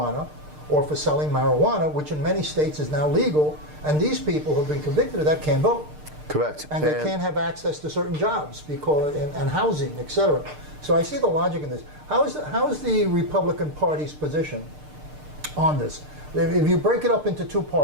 or for selling marijuana, which in many states is now legal, and these people who have been convicted of that can't vote. Correct. And they can't have access to certain jobs because and housing, etc. So I see the logic in this. How is the Republican Party's position on this? If you break it up into 2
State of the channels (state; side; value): late; left; 6.6 ms